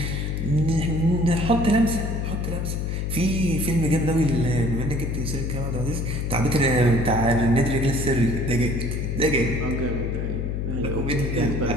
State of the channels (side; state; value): left; noise; hum, 1 dB below the sound